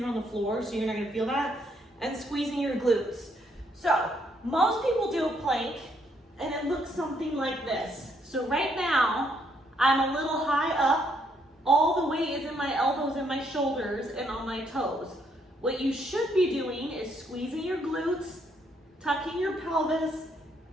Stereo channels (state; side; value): normal; both; correlation 0.72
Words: on the floor, so you're not gonna feel that, and squeezing your glutes. So most people do a plank and it looks something like this. So right now, I'm a little high up all the weight is in my elbows and my shoulders and on my toes. What you should be doing is squeezing your glutes, tucking your pelvis,